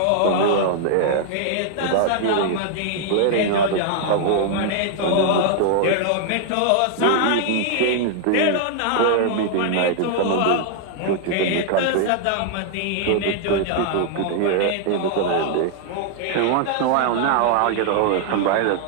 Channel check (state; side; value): different; both; correlation 0.00